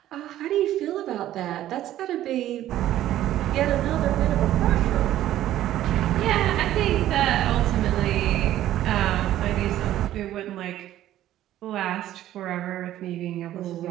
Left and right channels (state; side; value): quieter; left; 13.2 dB